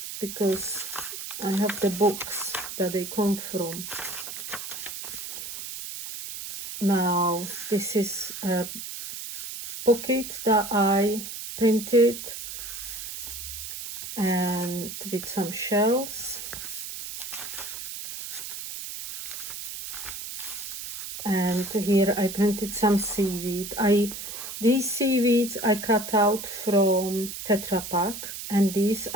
because I have the books that they come from. Now this is a pocket that I printed and with some shells, and here I printed some seaweed. These seaweeds I cut out from Tetra Pak, and these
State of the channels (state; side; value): noise; right; hiss, 8 dB below the sound